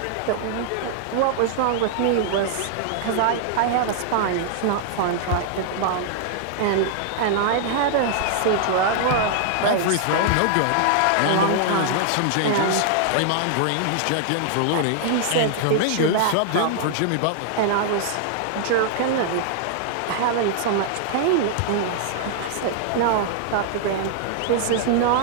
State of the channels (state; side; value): different; both; correlation -0.01